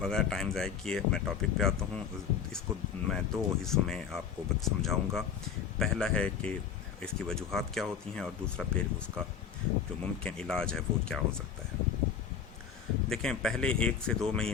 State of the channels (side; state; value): right; quieter; 7.3 dB